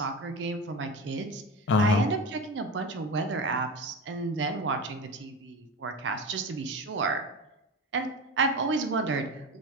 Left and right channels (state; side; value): normal; both; correlation 0.26